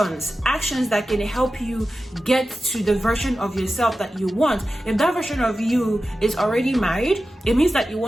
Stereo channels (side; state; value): both; normal; correlation 0.93